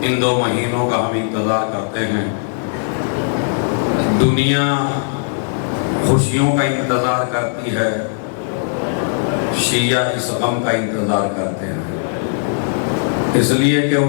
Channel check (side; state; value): right; silent; digital silence